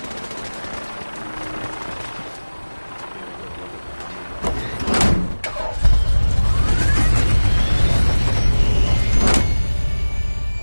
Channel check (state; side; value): inverted; both; correlation -1.00